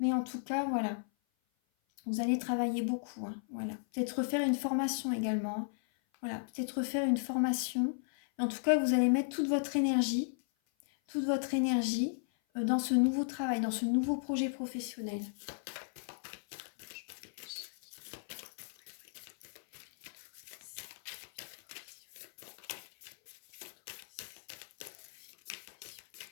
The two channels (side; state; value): right; silent; 54 dB below the other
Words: en tout cas, voilà, vous allez travailler beaucoup, hein. Voilà, peut-être refaire une formation également, hein. Voilà, peut-être refaire une formation. En tout cas, vous allez mettre toute votre énergie dans ce nouveau travail, dans ce nouveau projet professionnel.